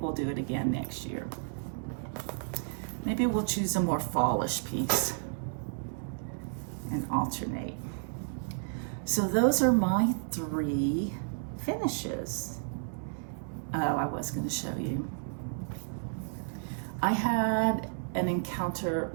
we'll do it again next year. Maybe we'll choose a more fallish piece and alternate. So those are my 3 finishes. Oh, I was going to show you. I had an encounter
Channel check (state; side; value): silent; left; digital silence